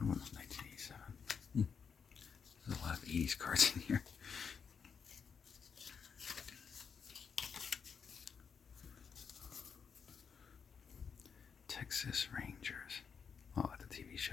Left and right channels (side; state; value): right; quieter; 6.4 dB